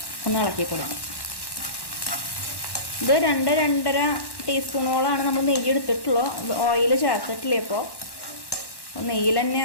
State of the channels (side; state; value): right; late; 1.1 ms